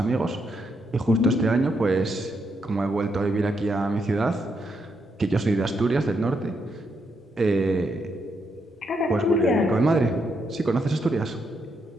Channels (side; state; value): both; normal; correlation 0.79